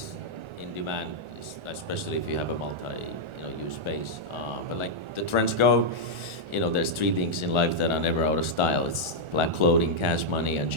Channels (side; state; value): left; late; 1.4 ms